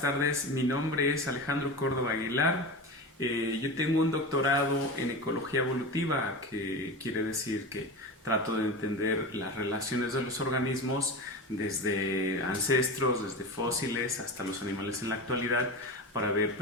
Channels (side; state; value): both; normal; correlation 0.26